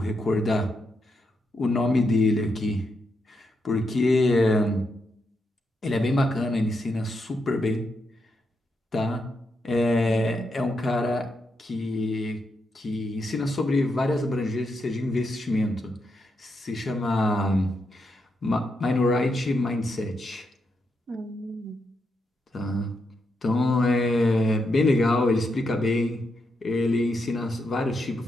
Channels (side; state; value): both; normal; correlation 0.82